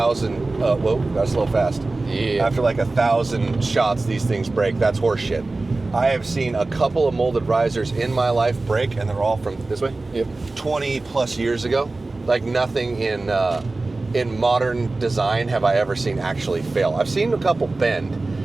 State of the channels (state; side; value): quieter; left; 3.3 dB